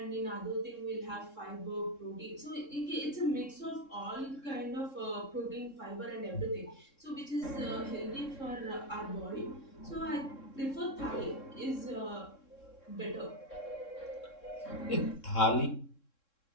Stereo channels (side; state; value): right; late; 3.7 ms